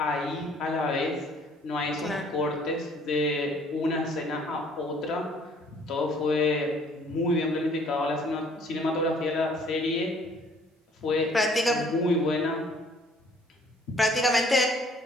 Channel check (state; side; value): normal; both; correlation 0.58